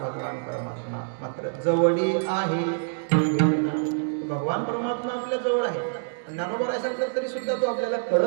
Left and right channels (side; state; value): left; silent; digital silence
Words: परमात्मा मात्र जवळी आहे. भगवान परमात्मा आपल्या जवळ आहे. ज्ञानोबा सांगतात तरी सुद्धा तो आपल्याला